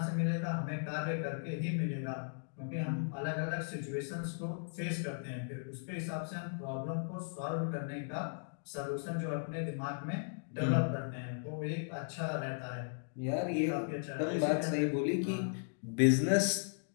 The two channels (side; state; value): right; silent; digital silence